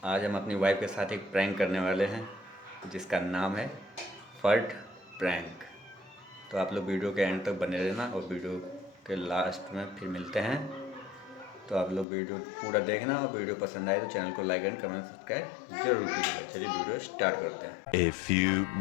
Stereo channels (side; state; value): right; drops out; at 12.1 s